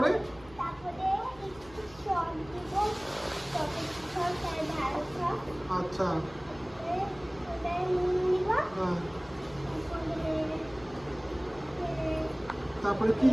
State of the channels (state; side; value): noise; left; hum, 22 dB below the sound